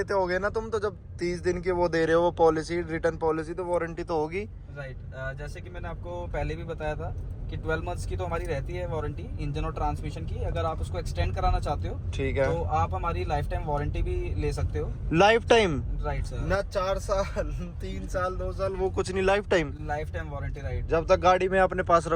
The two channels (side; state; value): both; identical; correlation 1.00